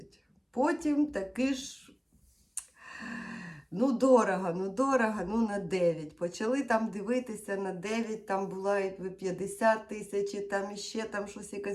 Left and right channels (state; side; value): identical; both; correlation 1.00